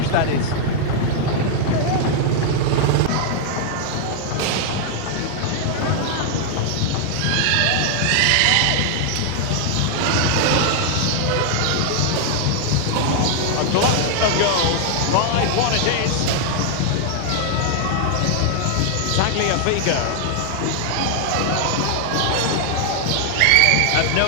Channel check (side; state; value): both; different; correlation 0.00